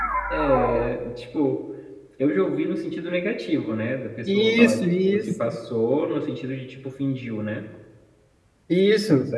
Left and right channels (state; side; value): identical; both; correlation 1.00